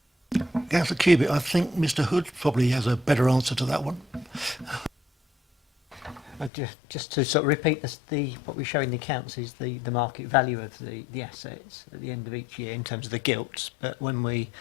Councillor Cubitt, I think Mr Hood probably has a better answer to that one. Just to sort of repeat this, what we show in the accounts is the market value of the assets at the end of each year in terms of the gilts, but when we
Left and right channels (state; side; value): drops out; right; at 6.5 s